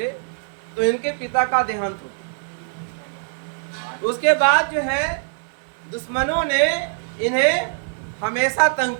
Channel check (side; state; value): left; silent; digital silence